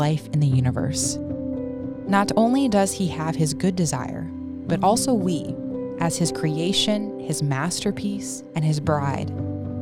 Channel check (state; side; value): identical; both; correlation 1.00